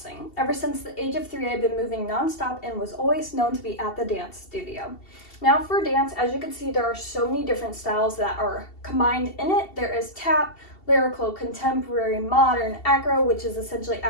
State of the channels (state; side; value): late; right; 2.7 ms